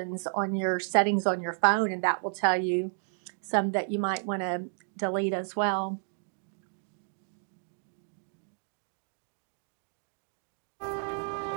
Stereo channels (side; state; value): left; silent; digital silence